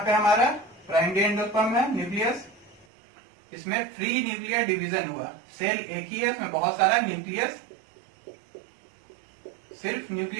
हमारा प्राइमरी एंडोस्पर्म है न्यूक्लियस, इसमें फ्री न्यूक्लियर डिवीजन हुआ। सेल एक ही है, इसमें बहुत सारा न्यूक्लियस, सिर्फ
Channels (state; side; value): drops out; left; at 2.9 s